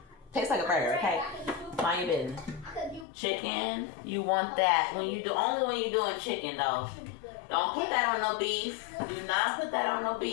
tastes like a burger, okay? Mind your business. Chicken, you want that. Only when you're doing chicken, though. Don't put that on no beef. Do not put that on no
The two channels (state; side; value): drops out; right; at 3.1 s